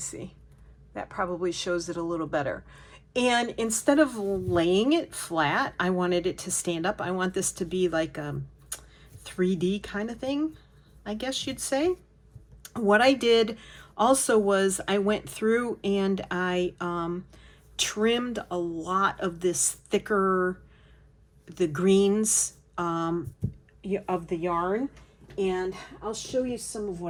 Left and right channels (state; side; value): identical; both; correlation 1.00